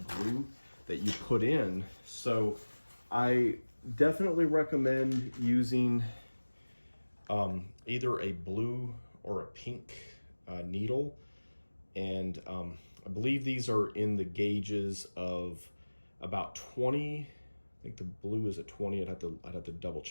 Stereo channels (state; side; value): inverted; both; correlation -1.00